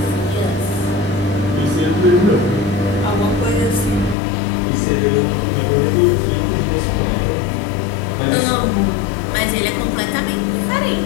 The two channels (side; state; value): right; drops out; at 4.2 s